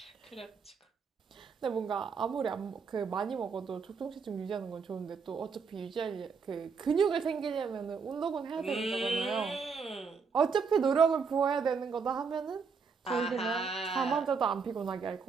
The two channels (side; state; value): left; quieter; 5.5 dB